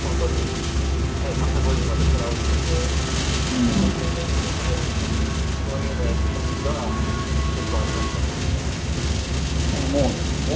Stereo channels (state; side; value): identical; both; correlation 1.00